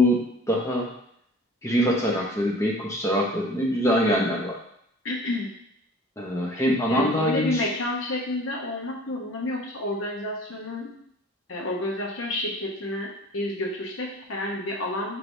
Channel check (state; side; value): normal; both; correlation 0.46